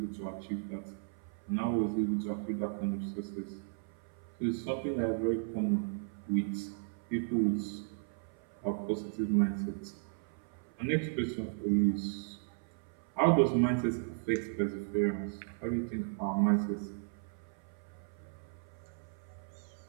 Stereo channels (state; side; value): silent; left; 54 dB below the other